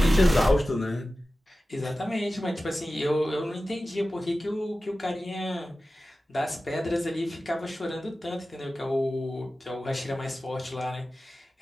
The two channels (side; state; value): both; normal; correlation 0.95